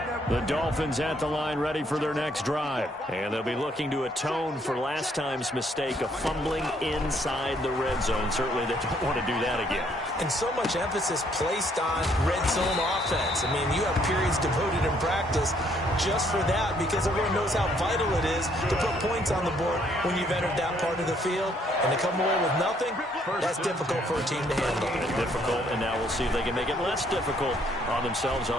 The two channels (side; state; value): both; normal; correlation 0.67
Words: The Dolphins at the line ready for their next drive. And they'll be looking to atone for last time's mistake of fumbling inside the red zone. Certainly they don't want to do that again. And so much emphasis placed on red zone offense. I mean, you have periods devoted in practice just for that because everyone knows how vital it is to put points on the board when you've entered that part of the field. And to come away with nothing, that's difficult for a team to handle. Difficult, and now we'll see if they can make it less difficult on themselves